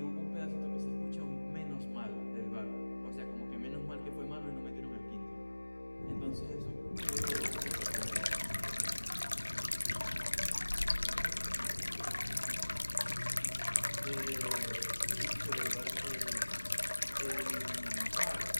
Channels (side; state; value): both; inverted; correlation -1.00